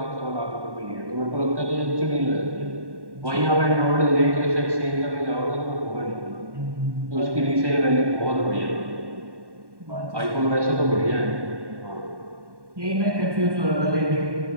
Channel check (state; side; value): late; left; 1.1 ms